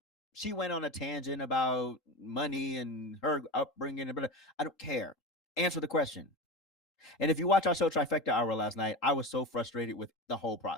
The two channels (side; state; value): both; normal; correlation 0.26